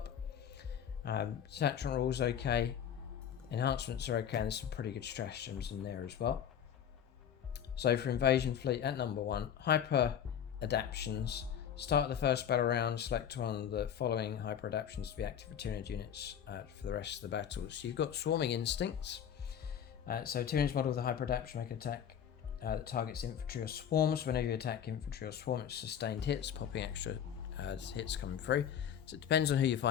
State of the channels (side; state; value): right; quieter; 9.0 dB